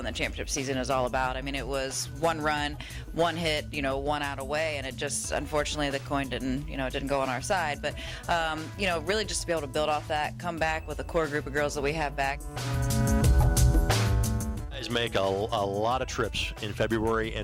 the championship season is all about. I mean, it was one run, one hit, one out away, and it just, unfortunately, the coin didn't go on our side. But, really just to be able to build off that, come back with a core group of girls that we have back. You guys make a lot of trips in February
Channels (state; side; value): identical; both; correlation 1.00